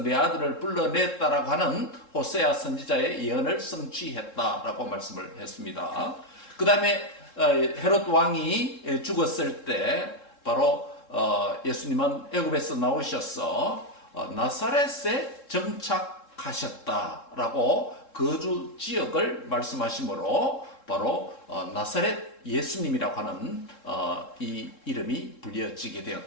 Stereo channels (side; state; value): right; late; 3.7 ms